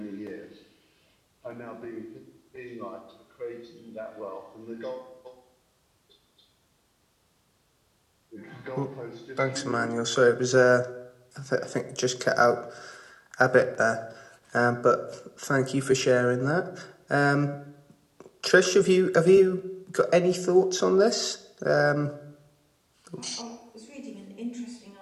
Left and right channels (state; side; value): identical; both; correlation 1.00